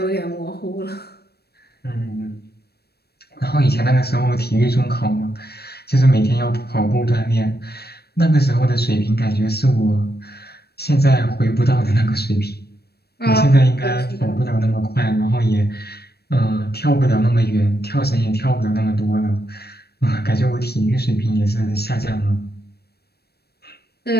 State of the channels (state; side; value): late; right; 0.47 ms